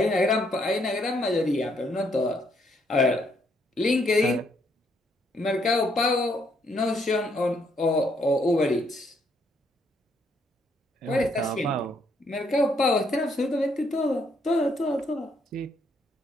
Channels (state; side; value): normal; both; correlation 0.72